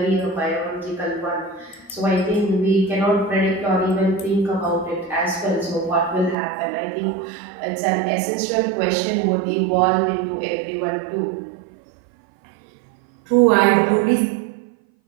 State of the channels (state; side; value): drops out; left; at 6.4 s